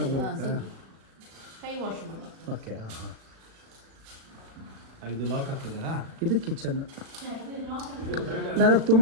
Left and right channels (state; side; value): late; left; 36 ms